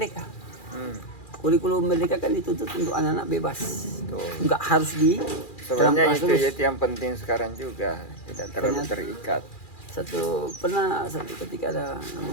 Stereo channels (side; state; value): right; late; 2.4 ms